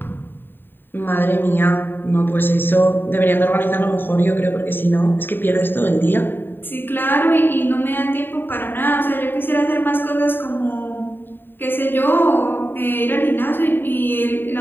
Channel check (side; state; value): right; late; 0.096 ms